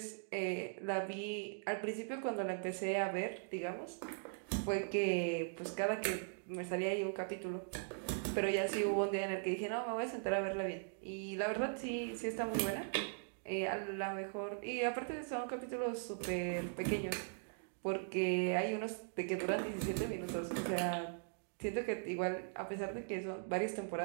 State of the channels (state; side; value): silent; left; digital silence